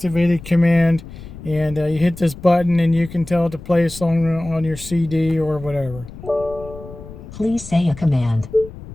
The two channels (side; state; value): left; noise; rumble, 15 dB below the sound